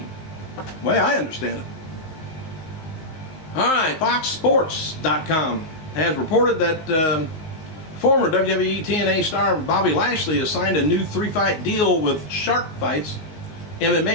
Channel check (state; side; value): late; right; 19 ms